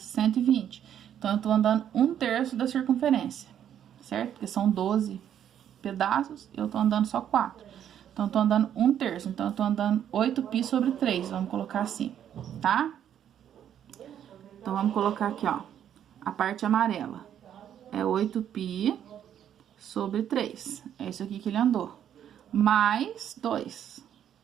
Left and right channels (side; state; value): left; quieter; 9.8 dB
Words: Então, eu tô andando 1/3 da circunferência, certo? Porque são 12 pedaços, eu tô andando só 4. Então, eu tô andando 1/3. Então, eu tô andando 8π sobre 3. Vamos colocar assim, tá? Então, vamos colocar aqui, ó. A parte amarela é 8π sobre 3. É isso aqui que ele andou. Mais 2.